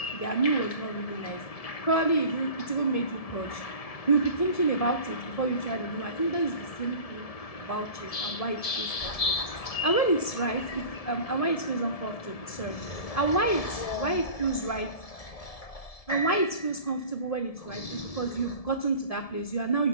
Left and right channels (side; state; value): right; late; 1.7 ms